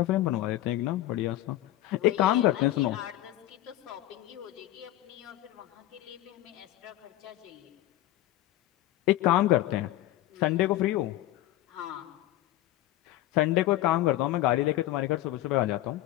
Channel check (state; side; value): quieter; right; 15.0 dB